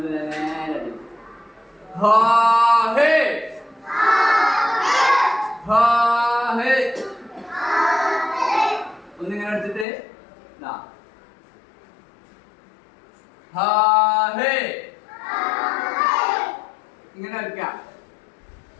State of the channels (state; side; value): drops out; right; at 9.9 s